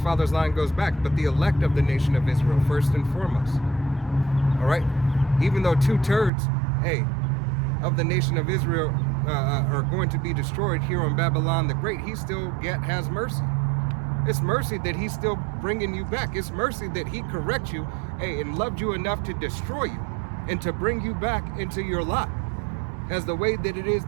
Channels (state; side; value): drops out; left; at 6.3 s